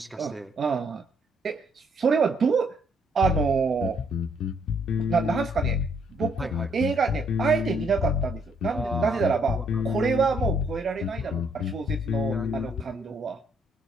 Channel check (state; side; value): normal; both; correlation 0.69